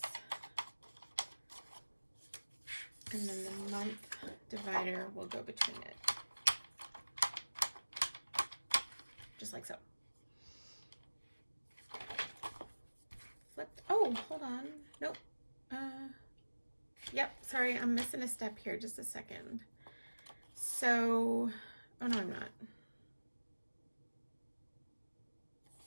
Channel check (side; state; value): both; inverted; correlation -1.00